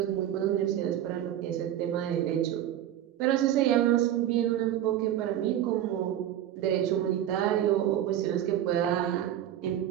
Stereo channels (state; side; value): quieter; left; 11.5 dB